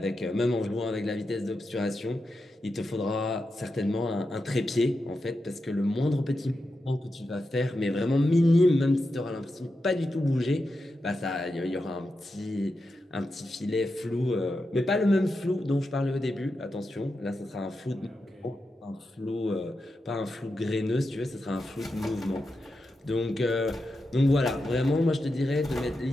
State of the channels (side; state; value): both; normal; correlation 0.88